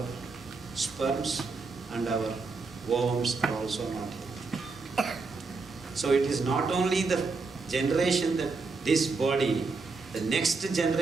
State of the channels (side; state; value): left; quieter; 4.1 dB